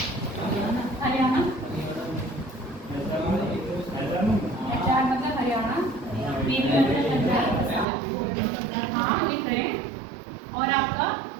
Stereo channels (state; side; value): drops out; left; at 7.9 s